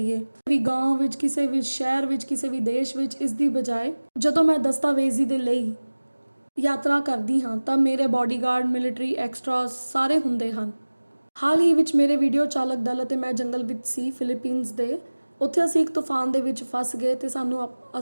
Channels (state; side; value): inverted; both; correlation -1.00